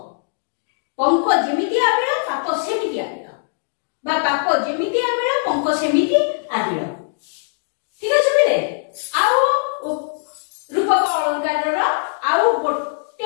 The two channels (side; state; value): right; silent; digital silence